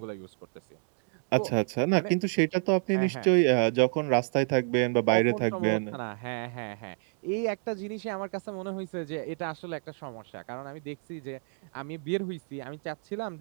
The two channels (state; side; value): silent; left; 58 dB below the other